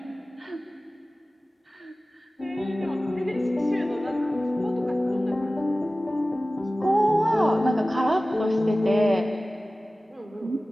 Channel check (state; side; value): normal; both; correlation 0.96